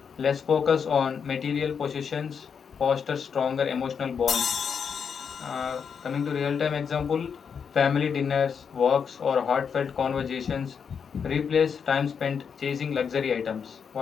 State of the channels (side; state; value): right; quieter; 6.6 dB